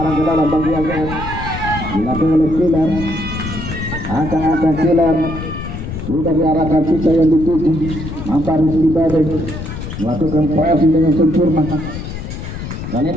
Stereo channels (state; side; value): noise; left; rumble, 7 dB below the sound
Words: ke dalam bagian AGS dilakukan oleh Killer. Angkat Killer sudah diarahkan kita yang dituju. Nampak Rizky Badai melakukan pressing dengan sempurna. Kali